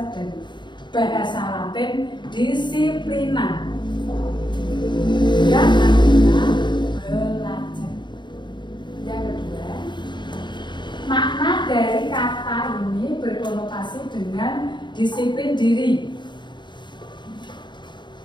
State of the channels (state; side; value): late; right; 0.22 ms